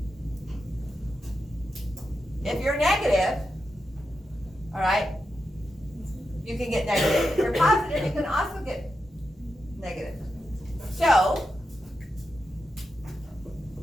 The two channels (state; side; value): normal; both; correlation 0.88